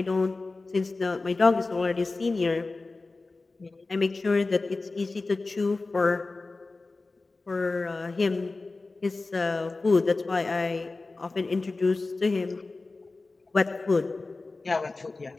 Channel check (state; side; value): quieter; right; 3.5 dB